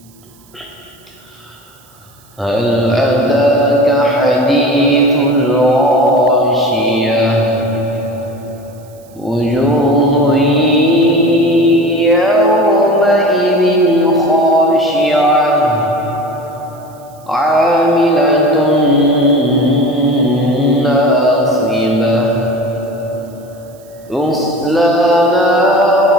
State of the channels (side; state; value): right; noise; hiss, 29 dB below the sound